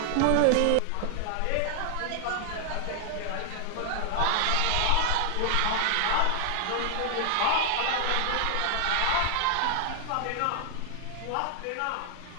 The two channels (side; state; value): both; different; correlation 0.00